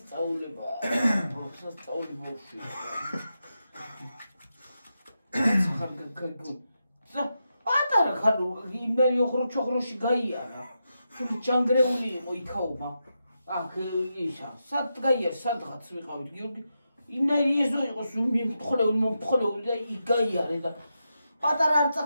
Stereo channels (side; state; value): both; inverted; correlation -0.87